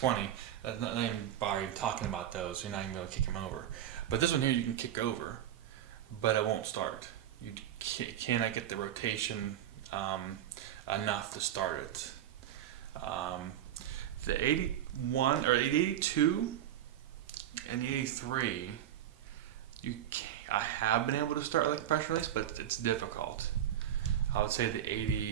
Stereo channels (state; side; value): quieter; left; 11.2 dB